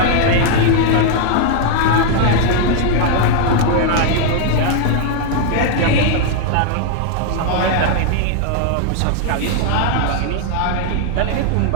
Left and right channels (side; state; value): both; different; correlation 0.00